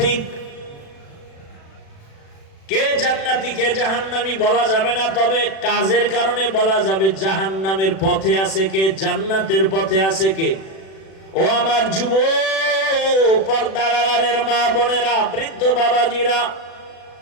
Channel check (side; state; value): right; late; 36 ms